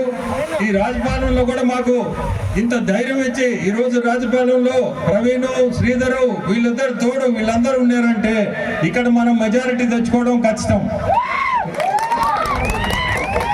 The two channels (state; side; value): identical; both; correlation 1.00